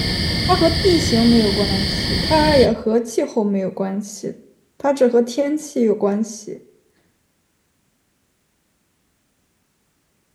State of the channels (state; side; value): identical; both; correlation 1.00